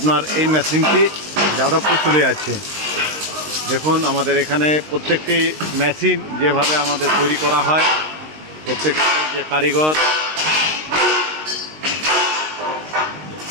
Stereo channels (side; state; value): left; late; 19 ms